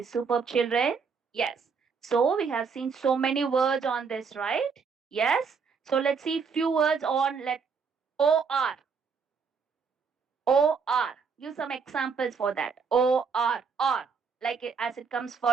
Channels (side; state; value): left; quieter; 5.6 dB